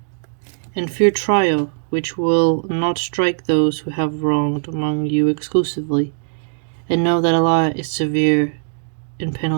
And fear trial, which will not strike those who have wronged among you exclusively, and know that Allah is severe in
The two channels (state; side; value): silent; left; digital silence